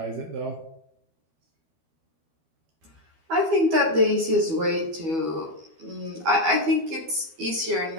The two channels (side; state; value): left; late; 12 ms